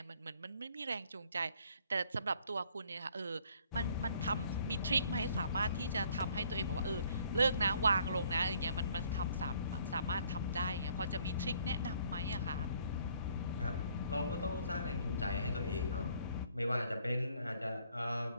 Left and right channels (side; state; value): both; inverted; correlation -0.62